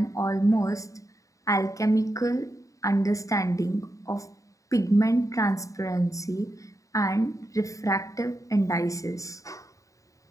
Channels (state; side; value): late; right; 0.16 ms